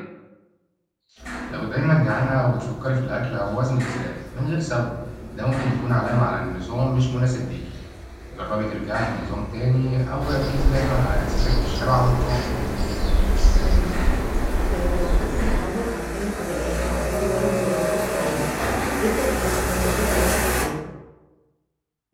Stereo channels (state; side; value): identical; both; correlation 1.00